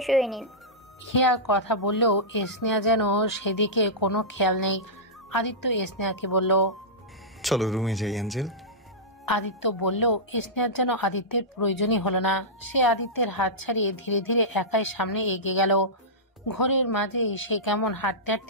হয়ে নিন। হিয়া কথা বললেও স্নেহা যেন সেদিকে কোনো খেয়াল নেই। আদিত্য স্নেহাকে বলল, চলো রুমে যাই অ্যাঞ্জেল। আদিত্য বললেও স্নেহার যেন আদিত্যের প্রয়োজনই হলো না। সে আদিত্যের হাত ছাড়িয়ে ধীরে ধীরে একাই সামনে এগিয়ে গেল। ঘরের মাঝেই সে কেমন হাঁটতে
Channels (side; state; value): both; normal; correlation -0.14